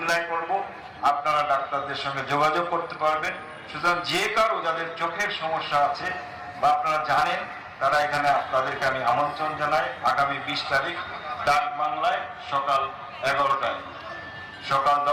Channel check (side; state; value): both; identical; correlation 1.00